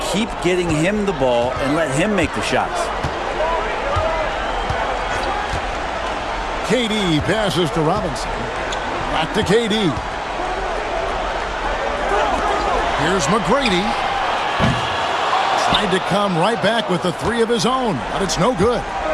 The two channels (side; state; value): both; identical; correlation 1.00